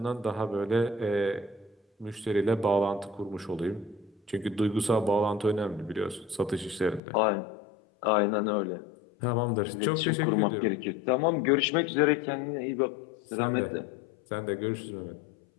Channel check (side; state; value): right; drops out; at 7.0 s